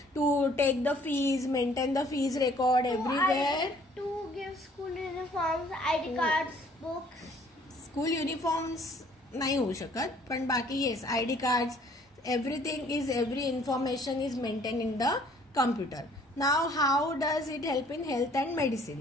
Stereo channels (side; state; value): both; normal; correlation 0.58